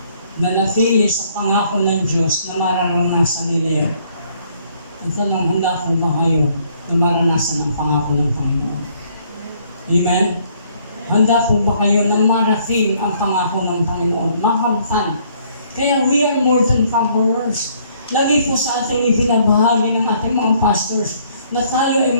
Nanatili sa pangako ng Diyos na mararanasan nila yan. Ang tanong, handa ko ba kayo na maranasan ang pangako ng Panginoon? Amen? Handa po ba kayo na marating ang pangako ng Panginoon? Makamtan Kaya we are more than conquerors. Lagi po sa ating ibinabahagi ng ating mga pastors na tayo ay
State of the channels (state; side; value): inverted; both; correlation -0.64